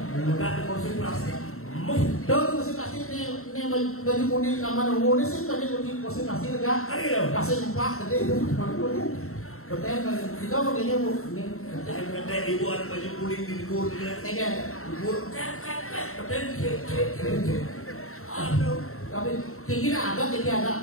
Enggak ada kursi plastik. Dong kursi plastik ini baju kuning kamar umum ini sih baju kuning kursi plastik enggak? Kasih empat tadi itu. Betul kita makanya bu ini. Kata ibu ada baju kuning di luar dia. Ikan. Ibu betul. Aduh. Tapi tinggi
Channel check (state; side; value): late; right; 0.63 ms